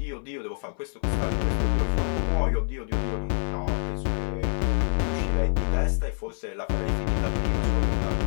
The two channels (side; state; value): right; silent; 59 dB below the other